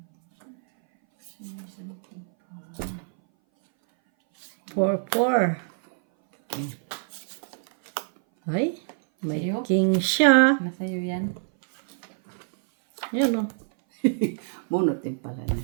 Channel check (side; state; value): left; silent; 59 dB below the other